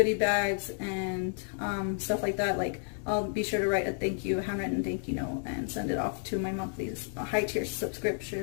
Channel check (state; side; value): silent; right; 57 dB below the other